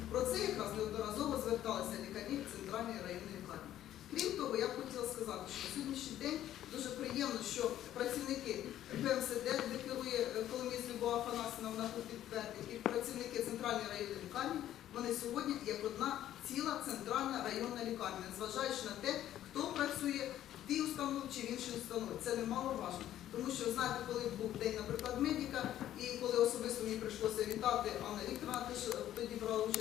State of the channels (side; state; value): right; quieter; 12.3 dB